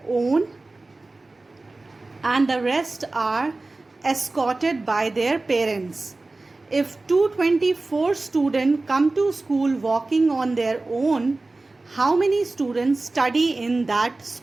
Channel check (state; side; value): quieter; left; 3.2 dB